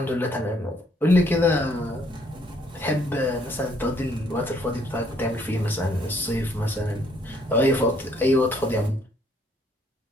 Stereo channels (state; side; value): normal; both; correlation 0.66